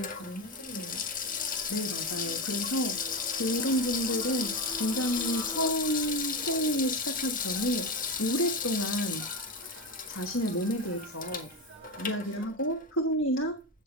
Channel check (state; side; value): normal; both; correlation 0.18